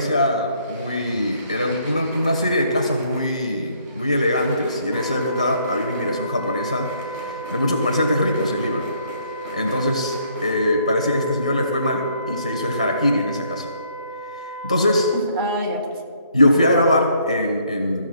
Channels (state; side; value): inverted; both; correlation -0.66